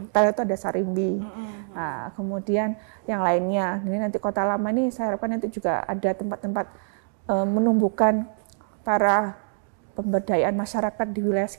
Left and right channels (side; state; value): left; silent; digital silence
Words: itu ada Sarimbi. Nah, kemudian yang lainnya, ini nanti Kota Lama ini saya harapkan nanti juga ada tempat-tempat menumbuhkan para pemberdayaan masyarakat di wilayah